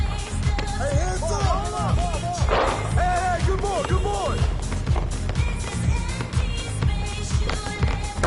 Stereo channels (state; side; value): identical; both; correlation 1.00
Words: Hey, hands up. Hey, good boy, good boy.